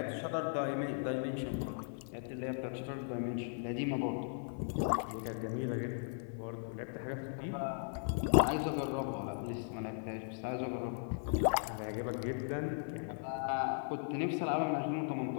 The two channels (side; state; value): right; silent; 53 dB below the other